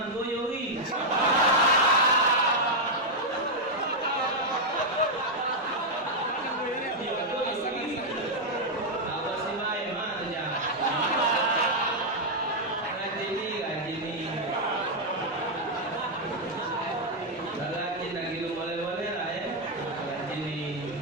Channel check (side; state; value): both; normal; correlation -0.02